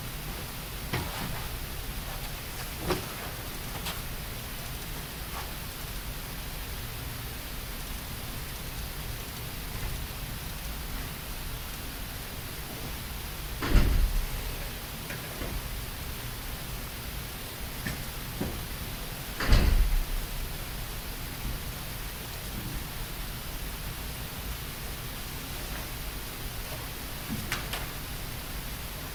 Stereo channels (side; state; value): both; identical; correlation 1.00